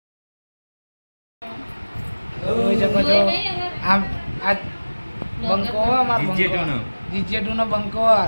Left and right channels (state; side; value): inverted; both; correlation -1.00